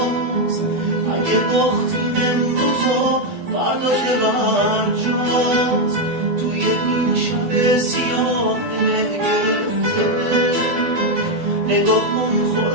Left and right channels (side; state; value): left; late; 12 ms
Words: اگه باختیم امروز و فردا که برجاست، توی این شب سیاه دل گرفته نگاه کن